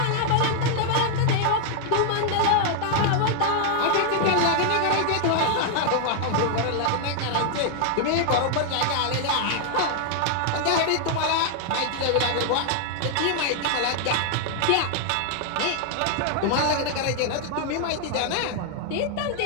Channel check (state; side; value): different; both; correlation 0.00